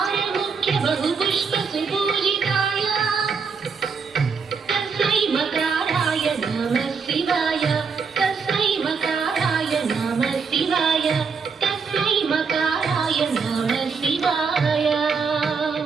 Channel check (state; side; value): quieter; left; 5.4 dB